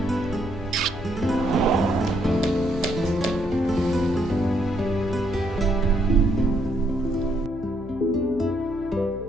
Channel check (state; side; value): noise; left; hum, 14 dB below the sound